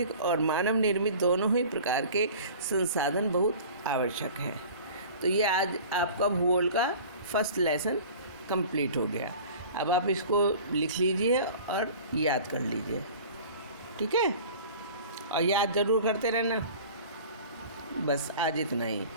और मानव निर्मित दोनों ही प्रकार के संसाधन बहुत आवश्यक हैं। तो ये आज आपका भूगोल का फर्स्ट लेसन कंप्लीट हो गया। अब आप इसको लिख लीजिए और याद कर लीजिए, ठीक है? और याद ज़रूर करते रहना। बस आज इतना ही।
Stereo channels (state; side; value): inverted; both; correlation -0.42